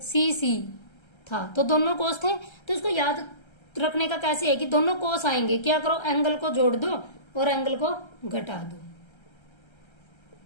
सी सी था तो दोनों कोस थे, तो इसको याद रखने का कैसे है कि दोनों कोस आएंगे, क्या करो एंगल को जोड़ दो और एंगल को घटा दो,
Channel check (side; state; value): right; late; 1.3 ms